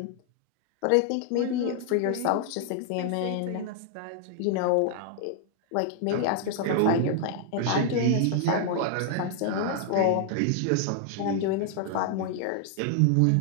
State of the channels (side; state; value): both; different; correlation 0.00